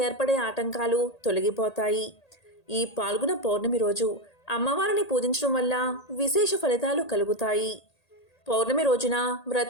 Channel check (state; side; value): late; right; 1.8 ms